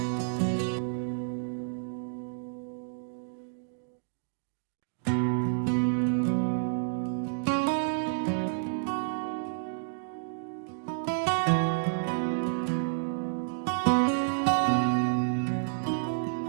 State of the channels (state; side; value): silent; left; digital silence